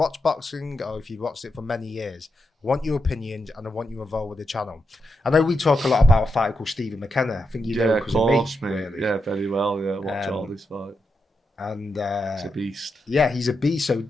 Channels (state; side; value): normal; both; correlation 0.85